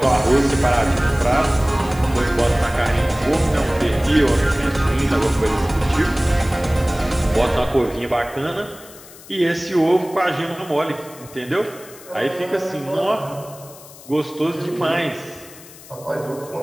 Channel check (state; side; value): noise; left; hiss, 20 dB below the sound